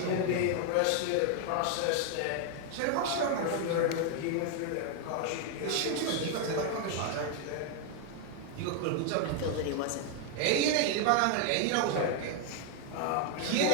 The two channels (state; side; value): different; both; correlation 0.01